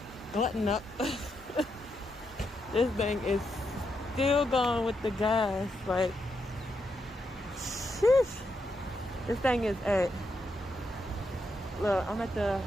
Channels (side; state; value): both; normal; correlation 0.82